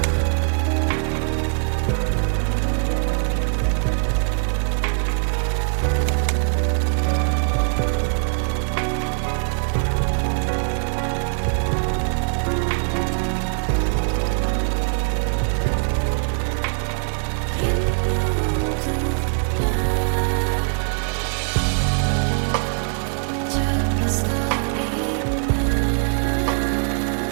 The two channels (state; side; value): silent; left; 58 dB below the other